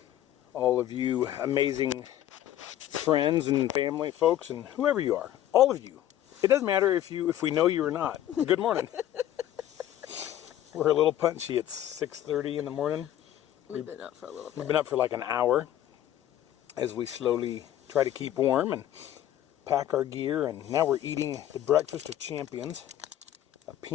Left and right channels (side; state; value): right; quieter; 12.3 dB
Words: All of you amazing friends and family folks and whoever you are. All of you. It doesn't matter if we know you or not. Good morning. We're a little punchy. It's 6:30 in the morning. We've been up for a little bit. We've been up for like an hour as we slowly try to keep warm and pack our gear. And now we're eating the breakfast of champions, a